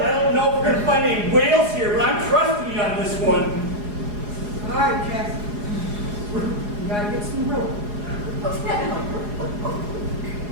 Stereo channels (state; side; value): late; left; 4.8 ms